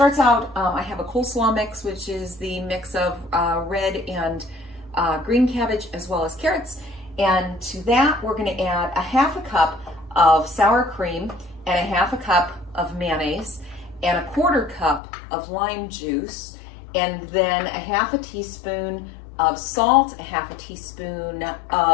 out, I have a coleslaw mix, which is the mix of red and green cabbage as well as carrots. And to that, we're gonna add a half a cup of sour cream and a half a cup of mayonnaise and a quarter cup of lime juice, and then a half a teaspoon of salt, a half a teaspoon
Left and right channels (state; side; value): drops out; right; at 15.0 s